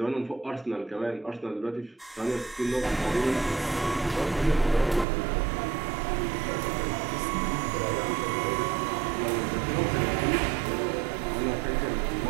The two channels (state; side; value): drops out; left; at 5.1 s